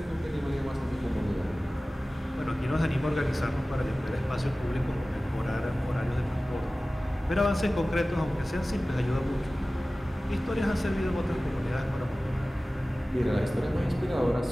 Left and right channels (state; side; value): normal; both; correlation 0.97